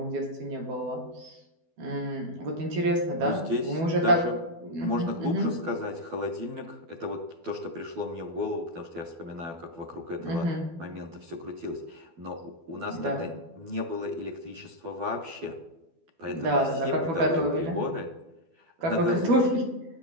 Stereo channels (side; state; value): left; late; 12 ms